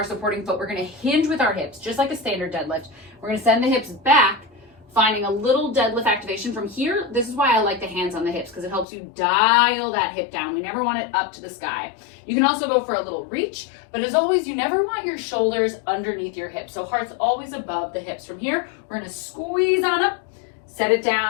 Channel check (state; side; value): drops out; right; at 8.8 s